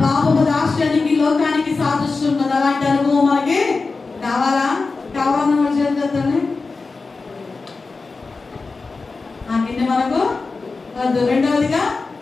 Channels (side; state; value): right; quieter; 4.1 dB